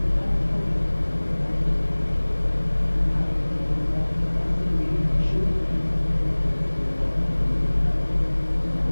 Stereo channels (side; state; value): both; inverted; correlation -1.00